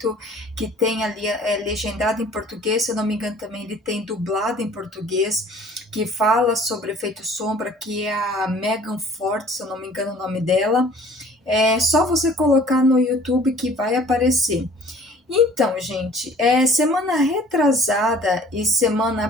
que tem ali legendado em português. Se eu não me engano, também ele tem dublado em português, que fala sobre o efeito sombra, que é a Megan Ford, se eu não me engano o nome dela. É só você colocar no YouTube que vai aparecer. Então, gente, semana retrasada e semana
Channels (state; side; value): normal; both; correlation 0.51